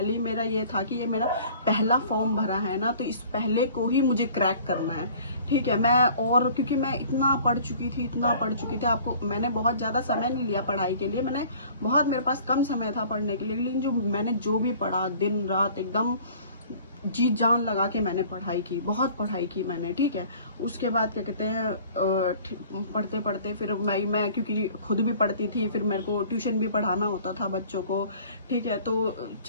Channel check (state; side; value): inverted; both; correlation -0.50